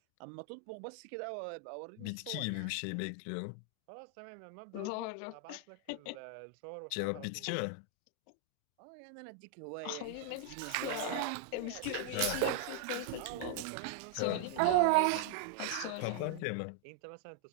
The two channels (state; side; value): different; both; correlation 0.00